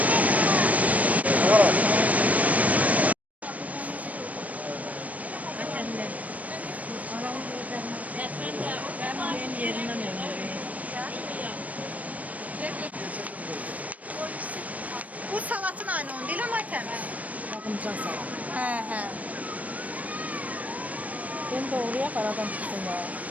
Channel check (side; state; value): left; late; 0.071 ms